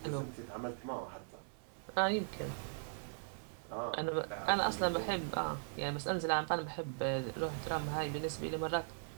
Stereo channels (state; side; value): silent; left; 52 dB below the other